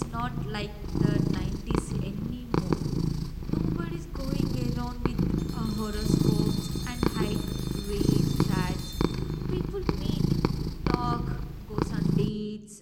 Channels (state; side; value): identical; both; correlation 1.00